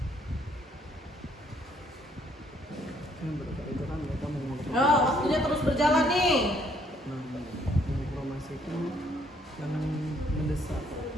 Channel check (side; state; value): both; normal; correlation 0.66